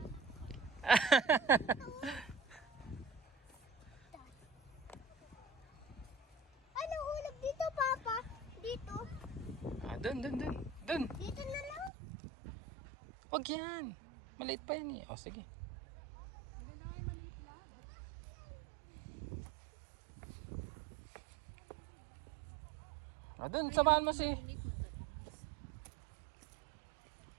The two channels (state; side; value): drops out; left; at 11.9 s